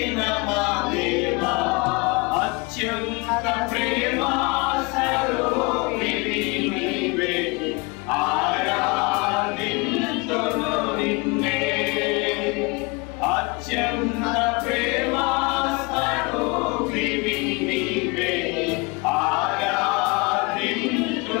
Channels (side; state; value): right; quieter; 27.9 dB